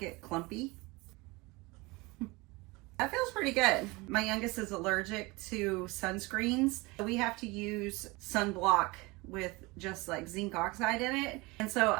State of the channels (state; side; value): quieter; left; 24.0 dB